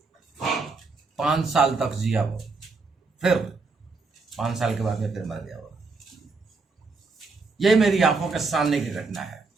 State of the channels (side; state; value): left; quieter; 4.1 dB